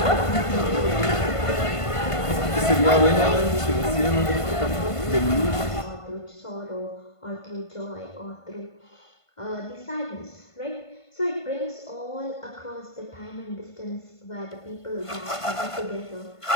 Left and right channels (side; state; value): right; late; 1.5 ms